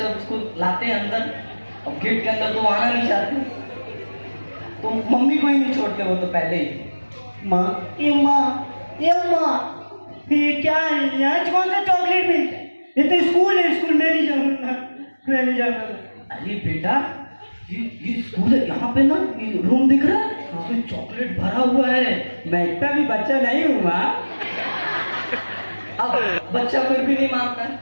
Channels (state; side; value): inverted; both; correlation -1.00